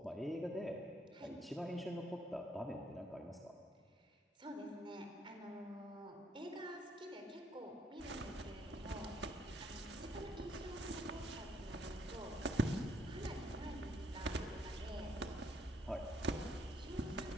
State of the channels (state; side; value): normal; both; correlation 0.69